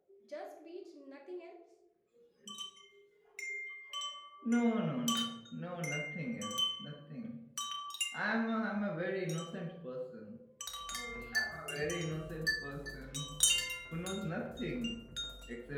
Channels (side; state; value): both; identical; correlation 1.00